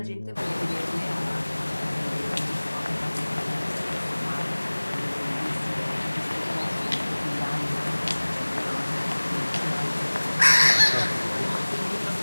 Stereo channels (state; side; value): inverted; both; correlation -1.00